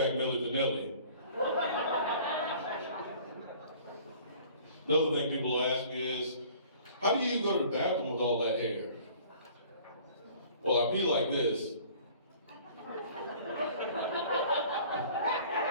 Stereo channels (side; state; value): both; inverted; correlation -0.50